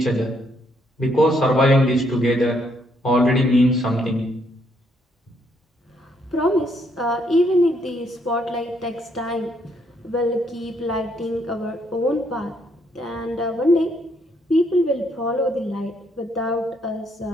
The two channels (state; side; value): normal; both; correlation 0.72